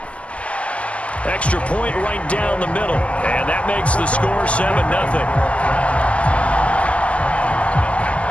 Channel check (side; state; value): right; late; 0.062 ms